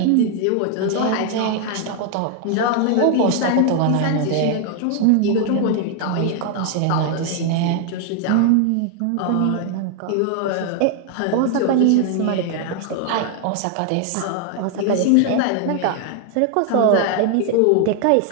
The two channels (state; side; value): different; both; correlation 0.00